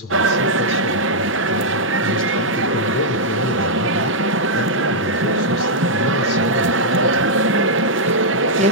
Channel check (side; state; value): both; normal; correlation -0.06